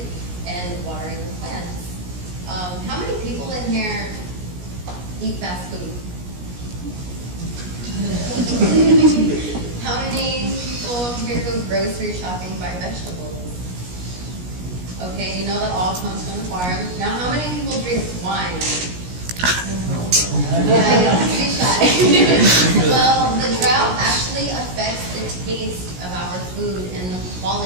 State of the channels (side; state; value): left; late; 17 ms